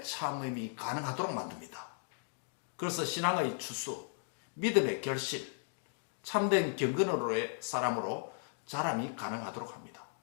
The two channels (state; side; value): silent; right; digital silence